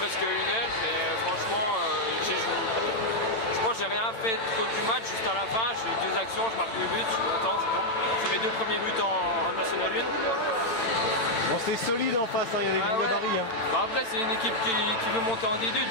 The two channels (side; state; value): right; late; 8.9 ms